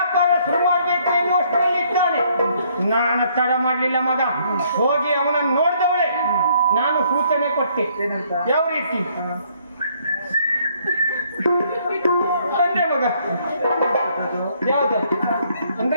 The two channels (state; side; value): inverted; both; correlation -0.66